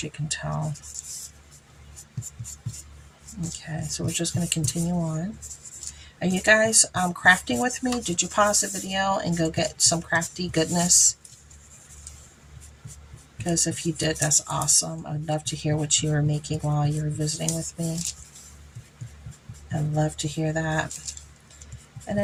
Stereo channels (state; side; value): identical; both; correlation 1.00